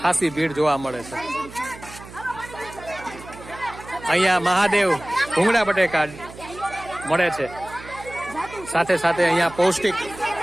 ખાસી ભીડ જોવા મળે છે. અહીંયા મહાદેવ ભૂંગળા બટેકા મળે છે. સાથે સાથે અહીંયા પૌષ્ટિક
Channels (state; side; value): noise; right; hum, 17 dB below the sound